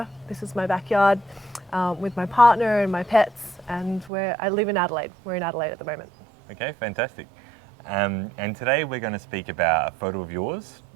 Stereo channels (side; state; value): left; drops out; at 4.1 s